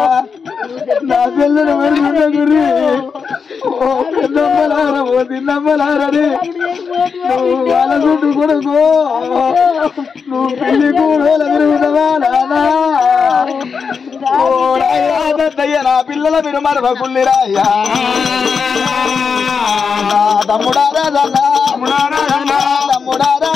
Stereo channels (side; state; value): right; quieter; 5.7 dB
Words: నా పిల్లలు మరుచుండ గురి ఓ పెద్దమ్మలారా ఓ తిన్నమ్మలారని నువ్వు వాళ్ళ చుట్టూ కొడుకో నువ్వు పెళ్లి కూడోల విరుగుతావా నానా ఓ రాయ్యా నా పిల్లల మీరు మరవ కుల్లిరాయ్యా తమ్ముడా రాజన్నా తమ్ముడా